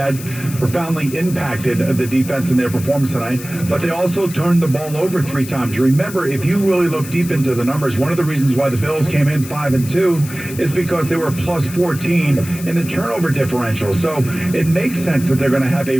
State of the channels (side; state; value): left; noise; hiss, 14 dB below the sound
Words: profoundly impacted the defense in their performance tonight. But they also turned the ball over 3 times. Remember, if you really look deep into the numbers, one of the reasons why the Bills came in 5-2 is because they were plus 14 in the turnover differential. So it makes sense that they're going to have a